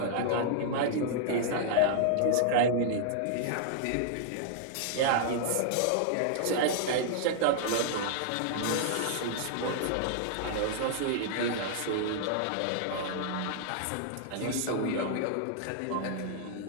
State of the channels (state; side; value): different; both; correlation -0.01